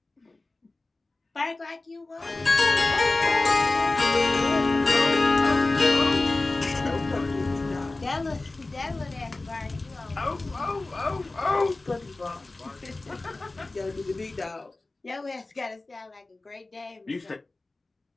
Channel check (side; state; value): right; quieter; 3.1 dB